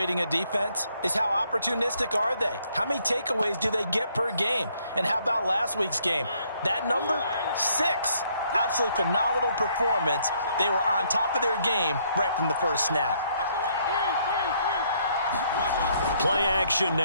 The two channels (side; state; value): both; inverted; correlation -0.68